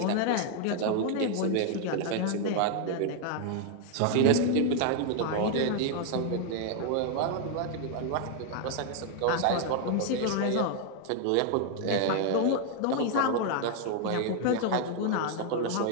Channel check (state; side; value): different; both; correlation 0.00